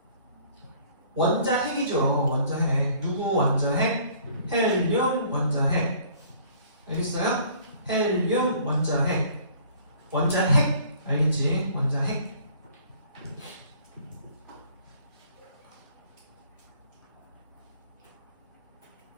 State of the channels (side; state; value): both; inverted; correlation -0.55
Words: 원자핵이죠. 원자핵. 누구 원자핵? 헬륨 원자핵. 알겠어요? 헬륨 원자핵. 원자핵 알겠지? 원자핵.